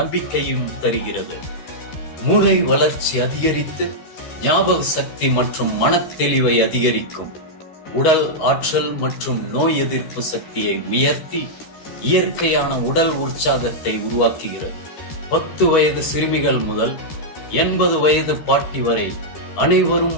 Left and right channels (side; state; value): right; late; 13 ms